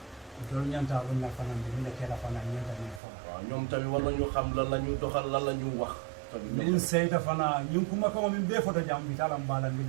tol ñanta lu na fana bi ne kala fana ñanta ni fo waaw ñoom tamit war nañu xam lan la ñu doxal lan la ñu wax. tamit min seyta fana ñun kuma ko min be foto jam bi talam bala mi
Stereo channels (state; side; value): drops out; left; at 3.0 s